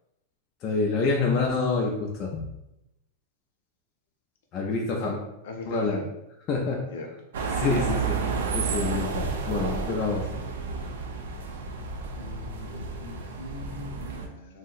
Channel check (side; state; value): both; normal; correlation 0.07